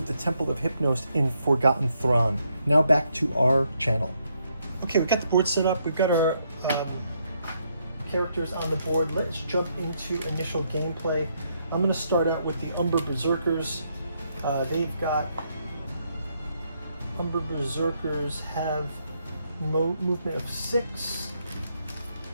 the Temple of Hypnos in Forgotten Thrawn. Now back to our channel. Okay, we've got the board set up. We've got our characters on the board. Let's jump into initial gameplay. I'm going to start out with the Umber Berserkers. They've got... Umber Berserkers have movement of 6.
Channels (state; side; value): inverted; both; correlation -0.76